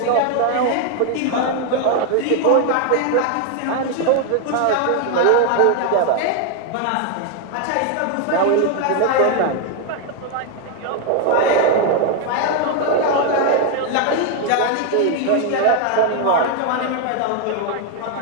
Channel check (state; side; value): different; both; correlation 0.00